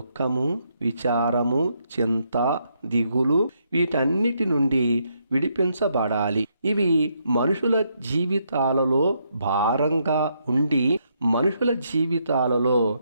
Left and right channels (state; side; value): inverted; both; correlation -0.76